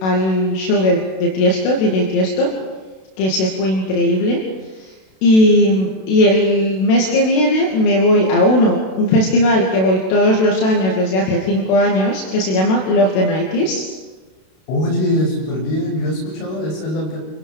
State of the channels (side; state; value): right; late; 32 ms